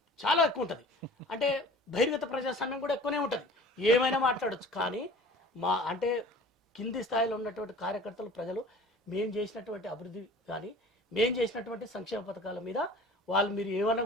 చాలా ఎక్కువ ఉంటుంది. అంటే బహిర్గత ప్రజాస్వామ్యం కూడా ఎక్కువనే ఉంటుంది, ఏమైనా మాట్లాడచ్చు. కానీ అంటే కింది స్థాయిలో ఉన్నటువంటి కార్యకర్తలు, ప్రజలు మేము చేసినటువంటి అభివృద్ధి కానీ మేము చేసినటువంటి సంక్షేమ పథకాల మీద వాళ్ళు మీరు ఏమన్నా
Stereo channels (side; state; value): both; normal; correlation 0.45